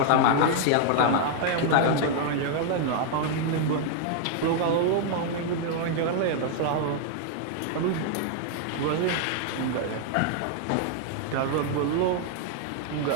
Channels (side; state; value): both; different; correlation 0.00